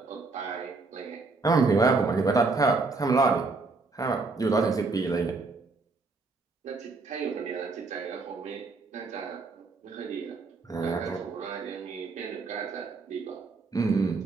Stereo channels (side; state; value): left; quieter; 3.9 dB